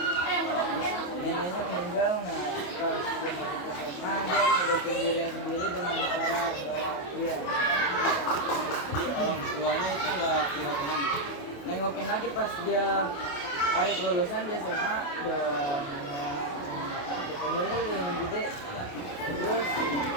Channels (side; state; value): right; late; 28 ms